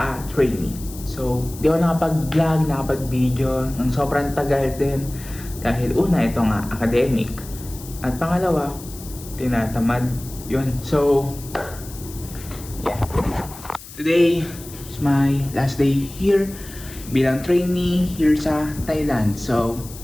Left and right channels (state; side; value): noise; left; hiss, 16 dB below the sound